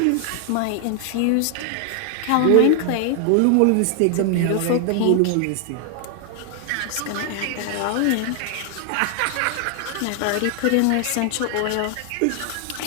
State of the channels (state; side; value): different; both; correlation 0.00